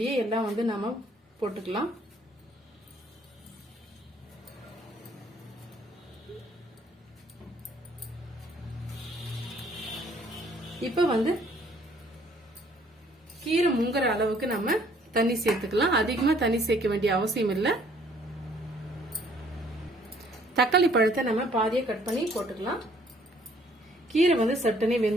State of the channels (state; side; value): normal; both; correlation 0.61